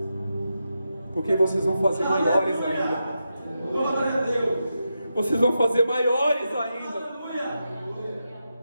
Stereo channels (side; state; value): both; inverted; correlation -0.87